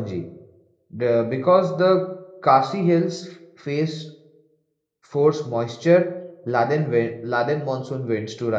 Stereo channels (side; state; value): both; identical; correlation 1.00